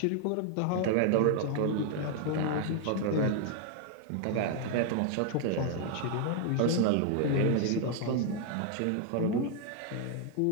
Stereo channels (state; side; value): different; both; correlation 0.00